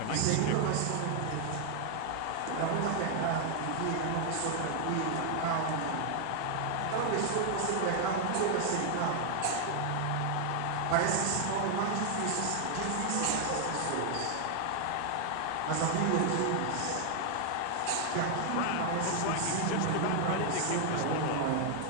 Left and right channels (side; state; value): both; different; correlation 0.00